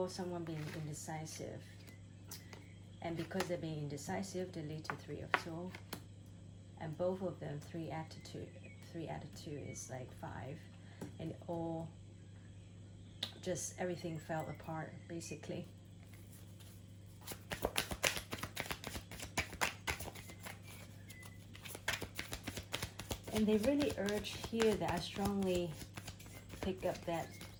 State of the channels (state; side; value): identical; both; correlation 1.00